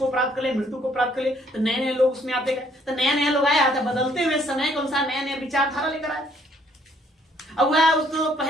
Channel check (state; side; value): normal; both; correlation 0.65